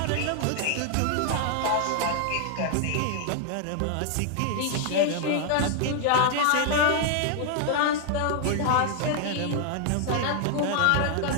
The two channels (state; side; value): different; both; correlation 0.00